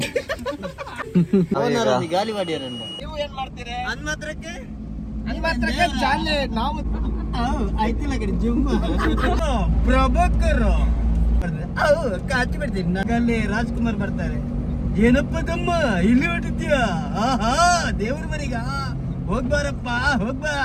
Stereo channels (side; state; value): both; identical; correlation 1.00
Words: ಗಾಲಿವಾಡಿಯರನ್ನು ನೀವು ಏನ್ ಮಾಡ್ತೀರಿ? ಹನ್ಮತ್ರಕ್ಕೆ ಜಾಲೆ ನಾವು ಆಯ್ತಿಲ್ಲ ಕಡೆ ಜುಮ್ಮ ಪ್ರಭಾಕರ್ ಕಾಚಿ ಬಿಡ್ತೀನಿ ಅಲ್ಲಿ ರಾಜ್ಕುಮಾರ್ ಬರ್ತಾರೆ. ಏನಪ್ಪ ತಮ್ಮ ಇಲ್ಲಿ ಹೊಟ್ಟಿದ್ಯಾ? ಆಹಾ ದೇವ್ರ ಮನೆಗ ಹೋಗ್ಬಾರಪ್ಪ ಹೋಗ್ಬಾ.